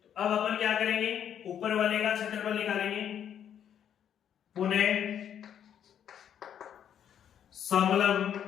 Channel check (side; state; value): right; quieter; 9.3 dB